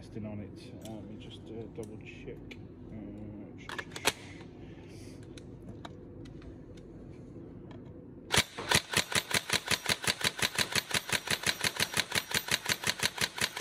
on it. Let me just double check.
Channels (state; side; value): identical; both; correlation 1.00